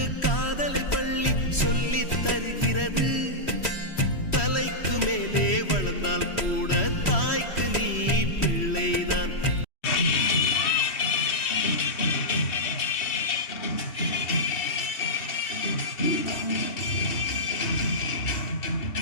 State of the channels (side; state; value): right; late; 3.1 ms